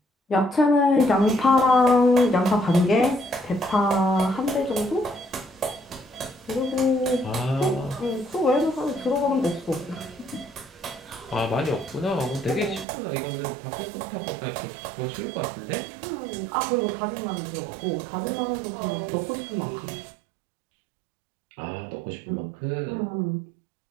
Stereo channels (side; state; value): left; drops out; at 12.9 s